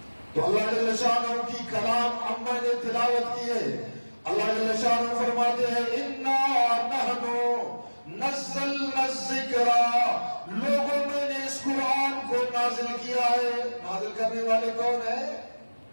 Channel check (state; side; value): inverted; both; correlation -1.00